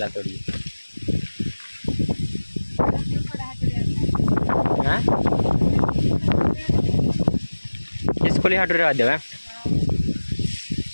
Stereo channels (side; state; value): both; inverted; correlation -1.00